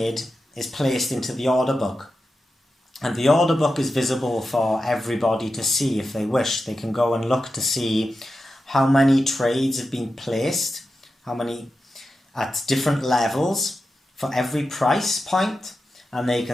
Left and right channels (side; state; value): both; normal; correlation 0.91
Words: is placed into the order book. And the order book is visible for everybody to see if they wish. They can go and look to see how many trades have been placed, how many at different levels for every price point, and they